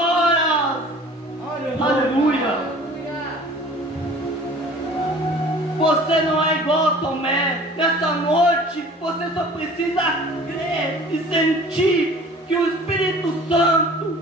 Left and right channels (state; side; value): normal; both; correlation 0.46